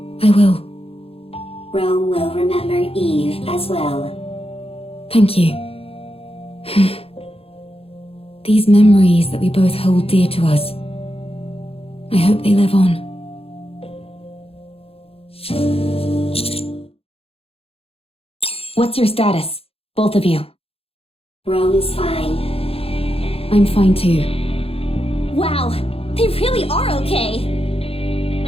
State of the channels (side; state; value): right; late; 0.28 ms